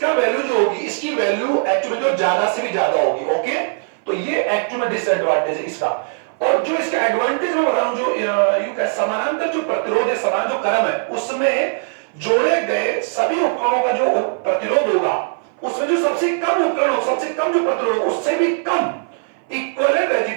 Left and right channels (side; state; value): left; silent; 60 dB below the other